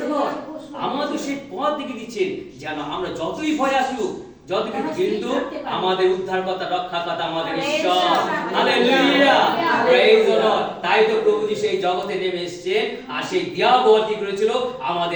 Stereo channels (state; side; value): identical; both; correlation 1.00